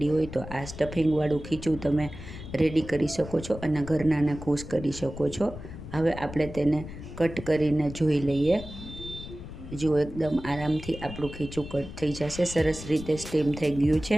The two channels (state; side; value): noise; left; rumble, 12 dB below the sound